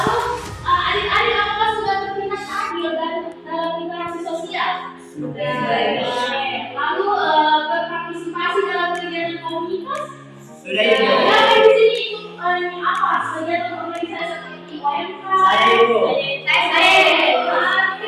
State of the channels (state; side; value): identical; both; correlation 1.00